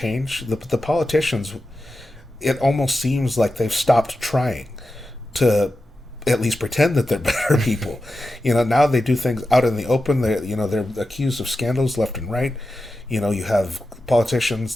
the politicians, it almost seems like they've stopped trying to at least pretend that they're better people. Now they do things out in the open. They're accused of scandals left and right. You have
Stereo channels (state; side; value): normal; both; correlation 0.91